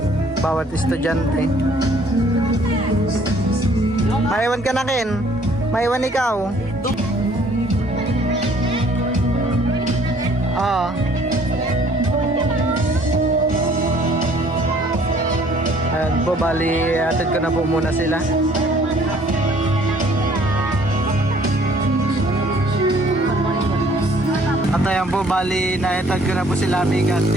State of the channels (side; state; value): both; normal; correlation 0.59